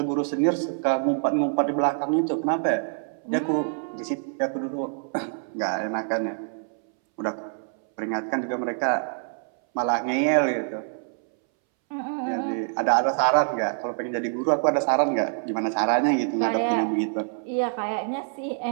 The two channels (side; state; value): left; silent; 61 dB below the other